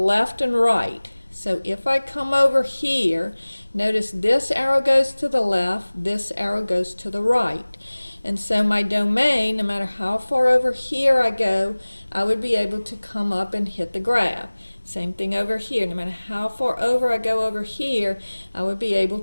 and right. So if I come over here, notice this arrow goes to the left, this arrow goes to the right. And so my domain, no matter how far over here I go, I would be able to come up and hit the graph. Same thing over here. No matter how far over I go over here, I would be able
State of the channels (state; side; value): inverted; both; correlation -1.00